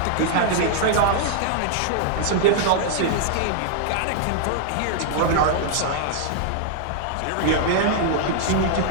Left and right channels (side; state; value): both; different; correlation -0.01